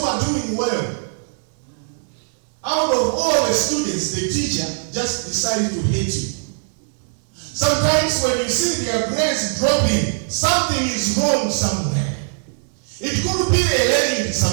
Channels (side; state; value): left; silent; digital silence